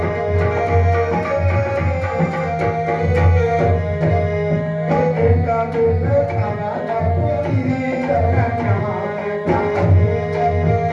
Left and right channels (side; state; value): both; identical; correlation 1.00